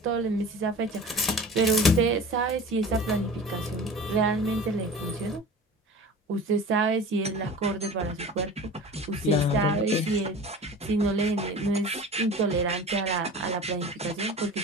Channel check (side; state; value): both; normal; correlation 0.37